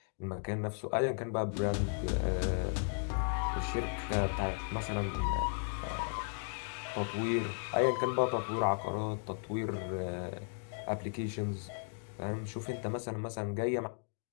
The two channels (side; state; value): right; silent; 54 dB below the other